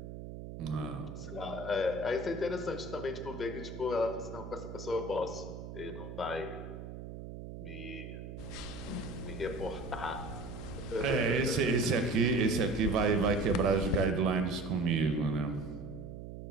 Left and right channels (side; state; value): right; noise; hum, 10 dB below the sound